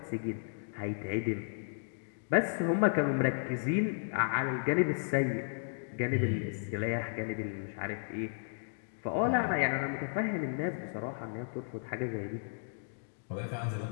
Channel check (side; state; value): right; silent; digital silence